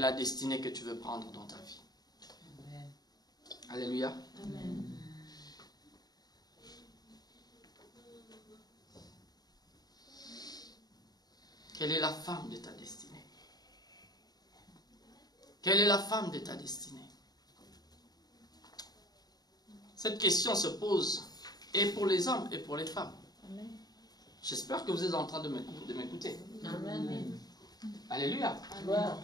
destinée que tu veux prendre dans ta vie? Amen. Alléluia. Amen. Quelle est la femme de ta destinée? Quelle est la femme de ta destinée? Cette question se pose et pour les hommes et pour les femmes. J'espère que vous êtes en train de m'écouter. Amen. Alléluia. Gloire.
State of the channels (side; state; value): right; late; 0.19 ms